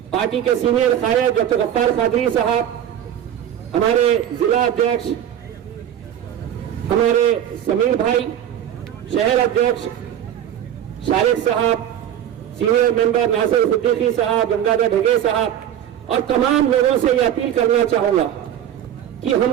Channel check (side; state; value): left; quieter; 10.4 dB